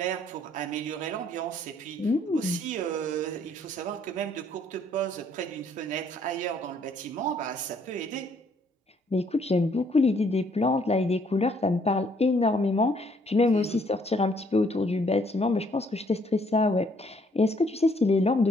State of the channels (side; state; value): both; normal; correlation 0.66